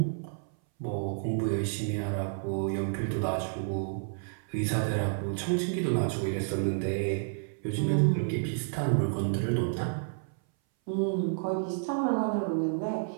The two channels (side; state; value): left; silent; 58 dB below the other